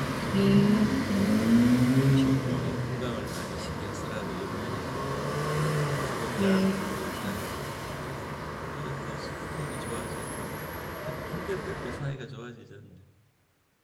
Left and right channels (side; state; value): both; identical; correlation 1.00